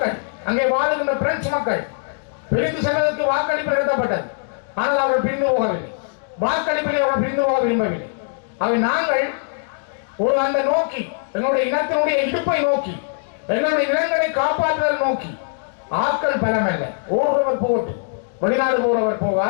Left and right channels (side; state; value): right; silent; digital silence